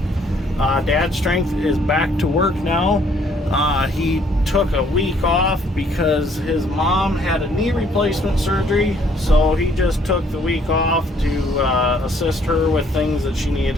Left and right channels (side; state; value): both; normal; correlation 0.64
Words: Dad's Strength is back to work now. He took a week off because his mom had a knee replacement surgery, so he just took the week off to assist her with things that she needed